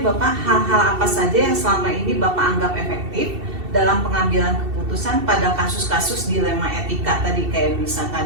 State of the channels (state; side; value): late; left; 2.7 ms